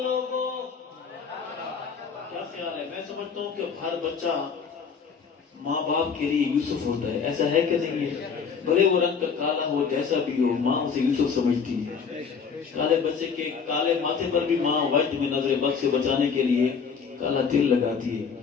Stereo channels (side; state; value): right; quieter; 6.1 dB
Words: لوگوں کیا خیال ہے میں سمجھتا ہوں کہ ہر بچہ ماں باپ کے لیے یوسف ہوتا ہے ایسا ہے کہ نہیں ہے بھلے وہ رنگ کا کالا ہو جیسا بھی ہو ماں اسے یوسف سمجھتی ہے کالے بچے کے کالے ماتھے پر بھی ماں وجد میں نظر بد سے بچانے کے لیے کالا تل لگاتی ہے